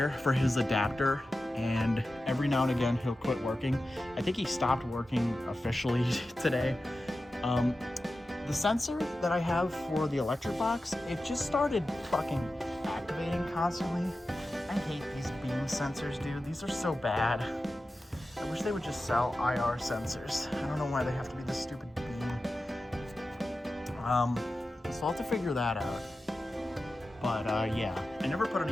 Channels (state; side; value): normal; both; correlation 0.93